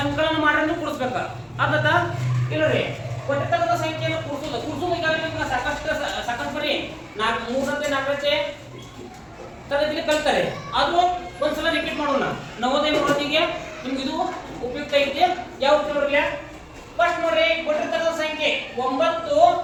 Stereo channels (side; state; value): both; identical; correlation 1.00